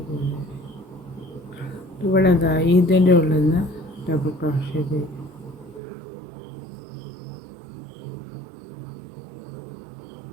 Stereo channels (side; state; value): left; drops out; at 5.8 s